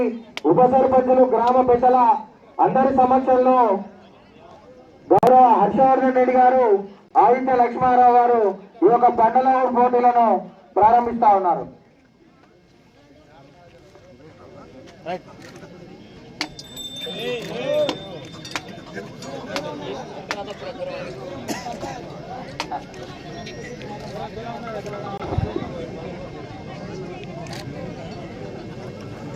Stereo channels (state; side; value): identical; both; correlation 1.00